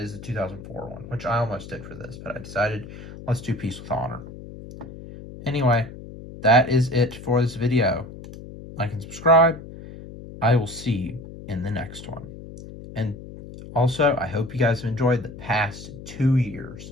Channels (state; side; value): noise; left; hum, 14 dB below the sound